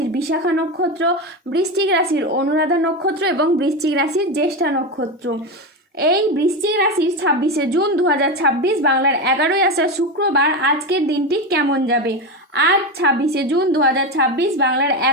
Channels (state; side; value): normal; both; correlation 0.16